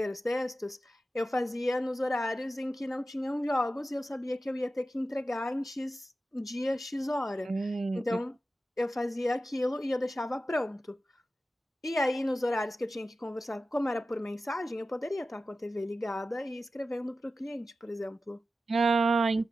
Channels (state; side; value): normal; both; correlation 0.93